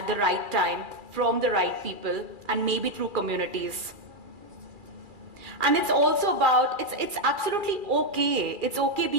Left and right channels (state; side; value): late; left; 2.4 ms